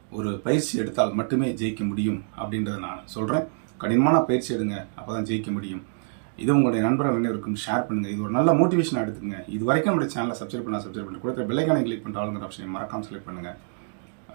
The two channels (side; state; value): left; silent; digital silence